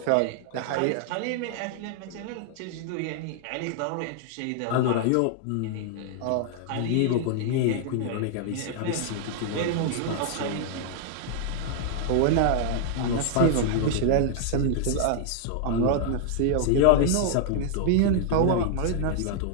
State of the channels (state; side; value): different; both; correlation 0.00